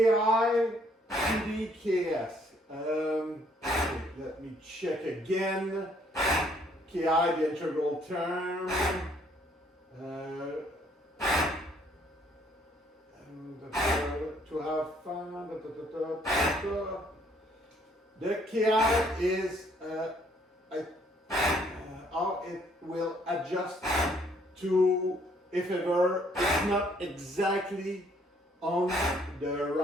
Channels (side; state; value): both; normal; correlation 0.65